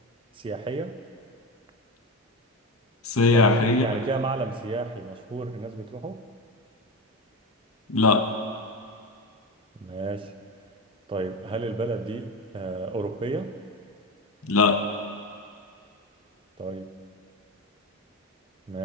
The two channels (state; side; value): normal; both; correlation 0.20